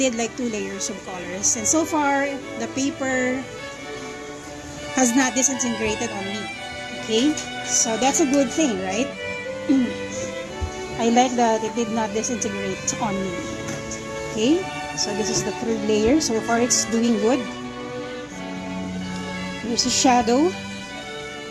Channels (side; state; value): both; identical; correlation 1.00